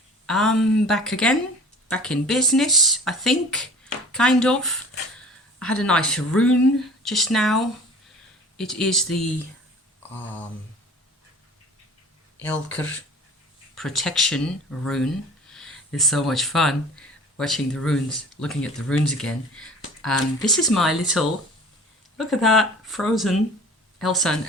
I'm back again, back in business, I think, kind of. I had a nice rune just now. It is the Elker protection rune. It's so much fun watching the runes, looking at the runes again. This is my little, look at that, frozen Elsa and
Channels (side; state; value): both; normal; correlation 0.44